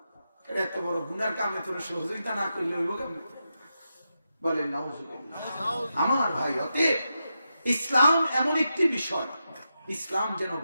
এত বড় গুনার কামে তোর সহযোগিতা না করলে হইব কেমন? বলেন নাউজুবিল্লাহ। আমার ভাই, অতএব ইসলাম এমন একটি বিষয়, ইসলাম যেন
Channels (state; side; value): inverted; both; correlation -0.88